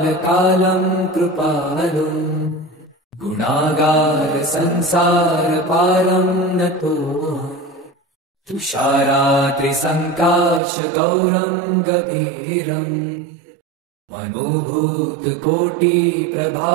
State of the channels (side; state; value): left; drops out; at 10.6 s